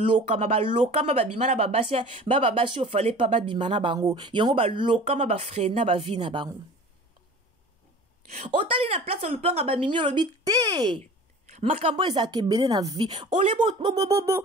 balokama babimana babasi ofale pa babimana bango yango balokama bafrena bavi na bango otali na place lupanga bamimi olobi te makambo ezaka ebele na vie ole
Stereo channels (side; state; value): both; normal; correlation 0.41